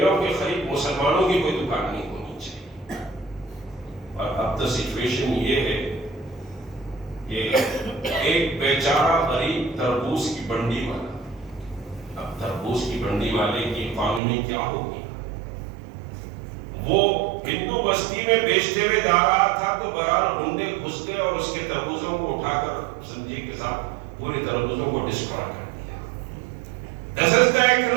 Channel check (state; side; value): drops out; left; at 14.2 s